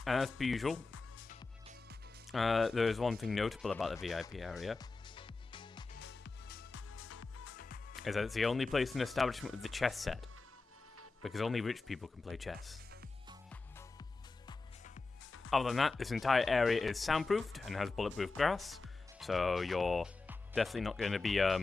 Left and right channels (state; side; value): quieter; right; 3.8 dB